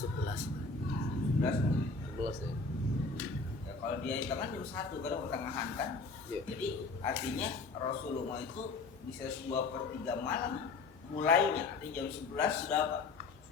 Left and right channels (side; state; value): right; quieter; 4.1 dB